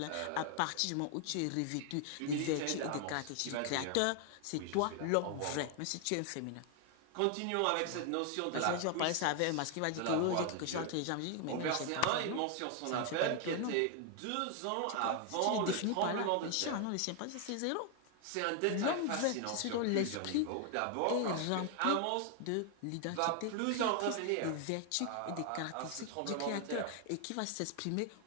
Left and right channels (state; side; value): different; both; correlation 0.00